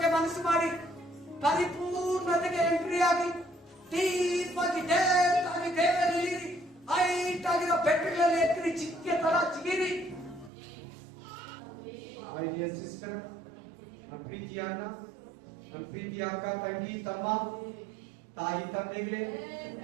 ಮನಸ್ಸು ಮಾಡಿ ಪರಿಪೂರ್ಣತೆಗೆ ಎಂಟ್ರಿ ಆಗಿ ಡೀಪ್ ಆಗಿ ಡೇಪ್ ಆಗಿ ದೇವರಲ್ಲಿ ಹೈಟ್ ಆಗಿರೋ ಬೆಟ್ಟಗಳಲ್ಲಿ ಎತ್ತಿರಿ, ಚಿಕ್ಕೆ ತರ ಚಿಗಿರಿ. My dear sister, ನಮ್ಮ ಪ್ರೀತಿಯ ಅಣ್ಣ, ನಮ್ಮ ಪ್ರೀತಿಯ ಅಕ್ಕ, ತಂಗಿ, ತಮ್ಮ, ತಾಯಿ, ತಂದೆಗಳೇ,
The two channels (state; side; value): drops out; left; at 10.5 s